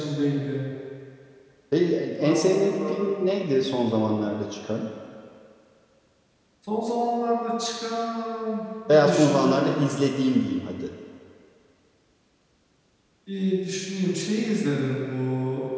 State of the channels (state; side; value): identical; both; correlation 1.00